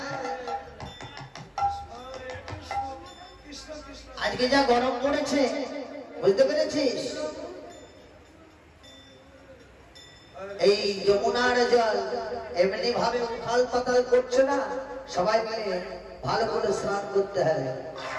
আজকে যা গরম পড়েছে, বুঝতে পেরেছিস? এই যমুনার জল এমনি ভাবে উথাল পাতাল করছে না, সবাই মিলে ভালো করে স্নান করতে হবে।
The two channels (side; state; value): both; identical; correlation 1.00